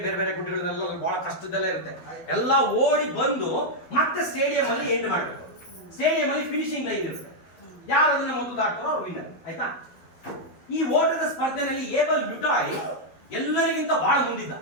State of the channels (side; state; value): right; late; 12 ms